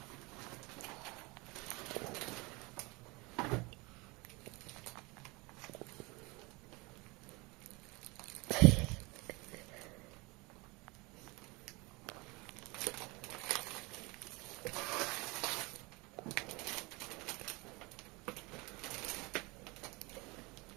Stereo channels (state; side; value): quieter; left; 25.6 dB